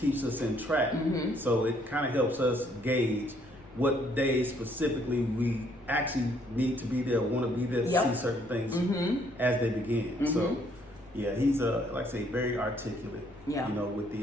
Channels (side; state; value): left; noise; rumble, 25 dB below the sound